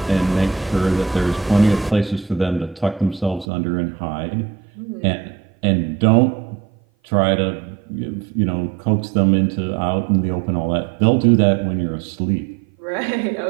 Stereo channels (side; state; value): left; drops out; at 3.5 s